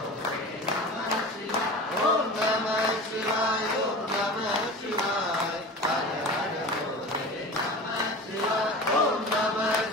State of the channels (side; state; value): both; normal; correlation 0.34